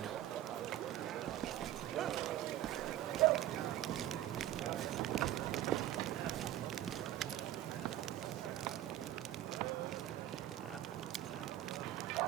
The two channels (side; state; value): left; quieter; 13.2 dB